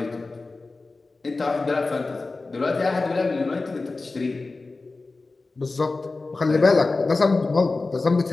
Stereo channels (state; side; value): quieter; right; 3.6 dB